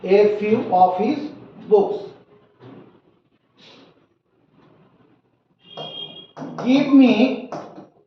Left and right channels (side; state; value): both; identical; correlation 1.00